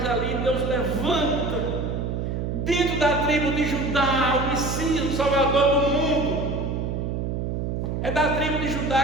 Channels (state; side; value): noise; right; hum, 2 dB below the sound